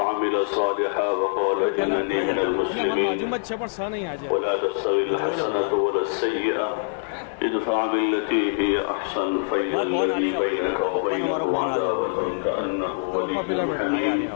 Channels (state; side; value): silent; right; digital silence